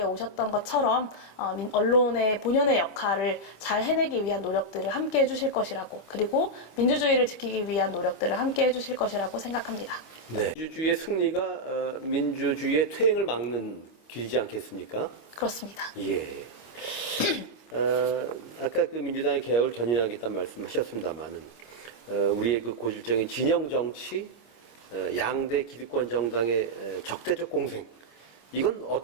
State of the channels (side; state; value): right; late; 25 ms